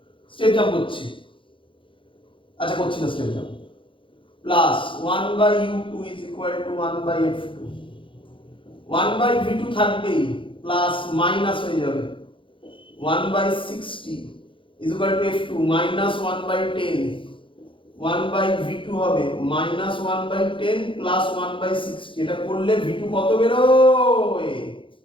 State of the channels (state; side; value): late; right; 0.25 ms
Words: স্টেপ জাম্প করছি। আচ্ছা করছি না step jump, plus 1 by u2 is equal to 1 by f2, 1 by v2 থাকবেই প্লাস মাইনাস হয়ে যাবে 1 by 60 is equal to f2 minus 1 by 10, 1 by v2 হবে মাইনাস 1 বাই 10 প্লাস 1 বাই 60। এটা করলে v2 কত বেরোয়?